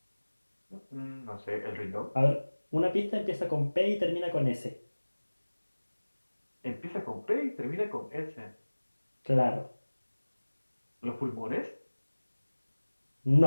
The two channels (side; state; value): both; inverted; correlation -1.00